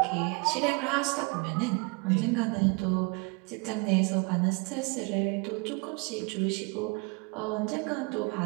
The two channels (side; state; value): left; quieter; 29.9 dB